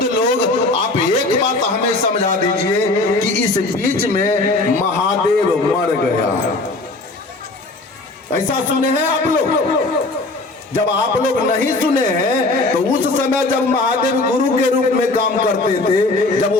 लोग, आप एक बात हमें समझा दीजिए कि इस बीच में महादेव मर गया, ऐसा सुने हैं आप लोग? जब आप लोग नहीं सुने हैं तो उस समय जब महादेव गुरु के रूप में काम करते थे, जब वो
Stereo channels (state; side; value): quieter; right; 3.1 dB